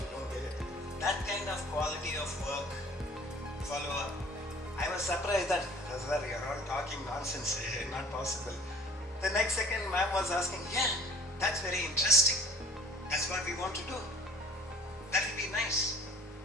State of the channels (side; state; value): both; normal; correlation 0.50